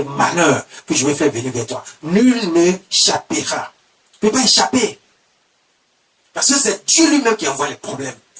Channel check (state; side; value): identical; both; correlation 1.00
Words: malheurs que je vais faire venir vers toi. Nul n'échappera. Tu ne peux pas échapper. Parce que c'est Dieu lui-même qui envoie les problèmes